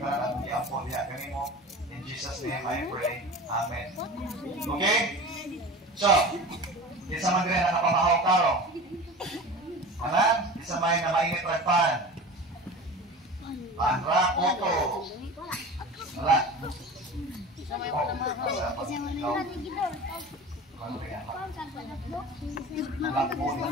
ang giampon niya kanimo. In Jesus' name I pray. Amen. Okay? So, isa man din nakapamahaw karo. Alam? Isa may na mainit ragpan. Panra, koto. Wala.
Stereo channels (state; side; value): normal; both; correlation 0.34